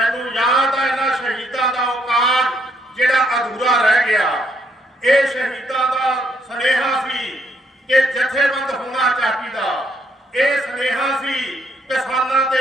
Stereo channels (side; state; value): both; normal; correlation 0.71